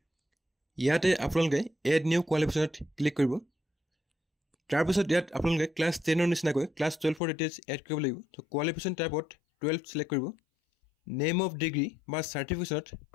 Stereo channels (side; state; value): right; drops out; at 7.2 s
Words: ইয়াতে আপোনালোকে এড নিউ কোৱালিফিকেশনত ক্লিক কৰিব তাৰ পিছত ইয়াত আপোনালোকে ক্লাছ 10ৰ নিচিনাকৈ ক্লাছ 12ৰ ডিটেইলছ এড কৰিব লাগিব তো কোৱালিফিকেশন টাইপত 12 সিলেক্ট কৰিব নেম অফ ডিগ্ৰী বা সাৰ্টিফিকেটত